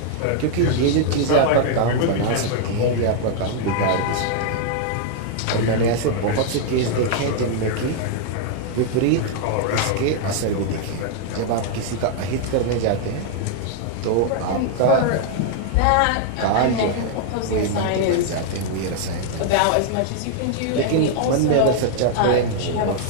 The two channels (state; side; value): different; both; correlation 0.00